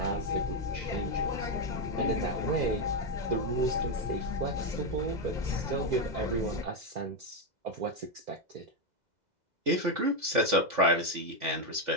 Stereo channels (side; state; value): left; late; 2.0 ms